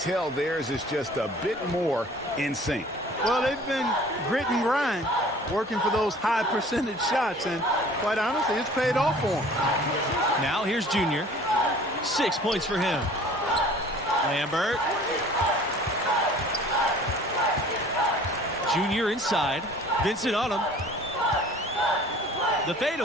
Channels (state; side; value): normal; both; correlation 0.49